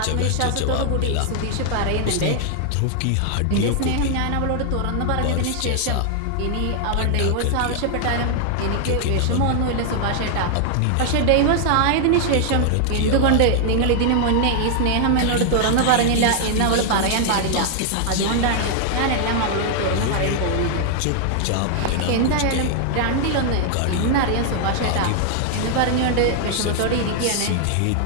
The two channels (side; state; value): both; different; correlation 0.00